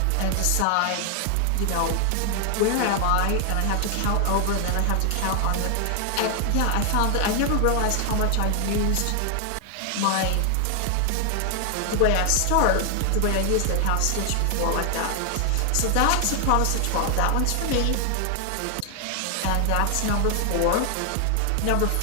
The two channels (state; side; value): different; both; correlation 0.00